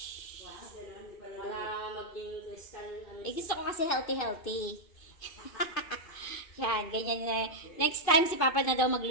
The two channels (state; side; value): late; right; 2.5 ms